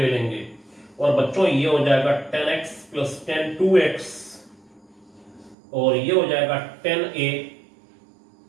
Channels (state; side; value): drops out; left; at 5.6 s